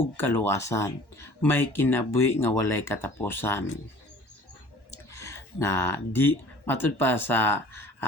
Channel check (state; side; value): late; right; 1.1 ms